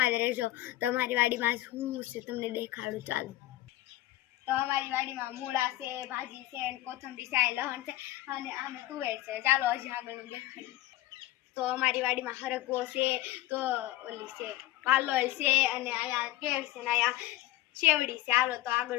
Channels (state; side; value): quieter; right; 16.3 dB